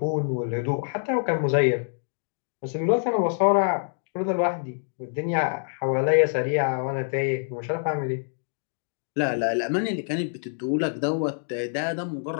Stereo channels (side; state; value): right; silent; digital silence